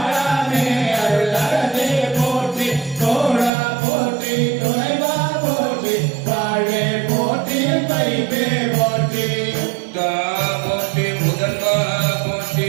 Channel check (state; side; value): drops out; left; at 3.5 s